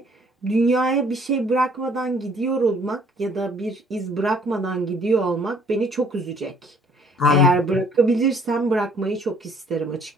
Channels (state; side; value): normal; both; correlation 0.59